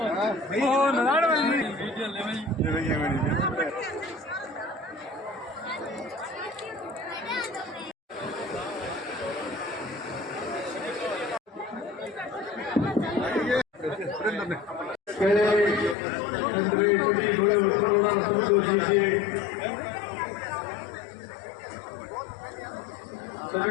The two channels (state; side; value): drops out; right; at 16.0 s